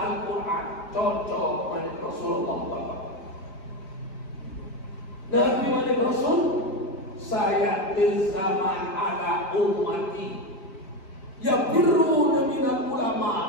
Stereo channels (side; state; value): right; late; 5.2 ms